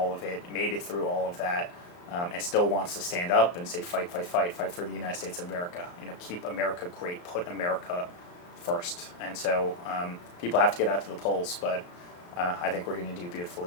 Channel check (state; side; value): late; right; 34 ms